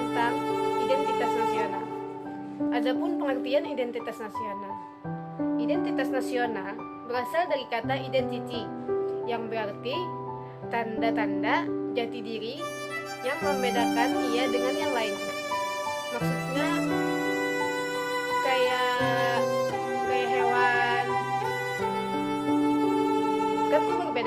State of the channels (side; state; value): both; identical; correlation 1.00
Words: identitas nasional. Adapun pengertian identitas nasional. Identitas nasional berasal dari kata identity yang berarti tanda-tanda jati diri yang membedakan ia dengan yang lainnya. Maksudnya kayak hewan kan tuh